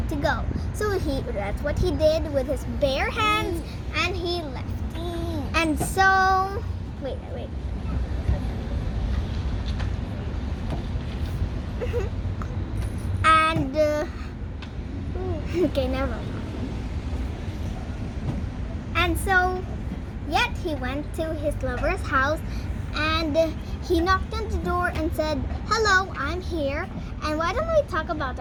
to go. So that's what he did with his bare hands, and he left. And so, wait. And, okay, never mind. And so, yet he went to his lover's house, and he knocked on the door and said, hello, I'm here, and why don't we talk about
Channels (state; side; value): identical; both; correlation 1.00